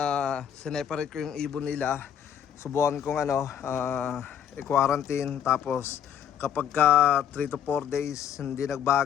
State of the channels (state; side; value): quieter; right; 8.9 dB